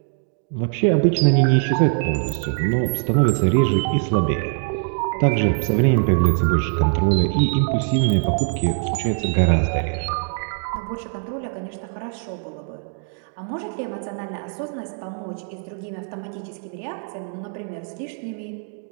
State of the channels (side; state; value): left; silent; 55 dB below the other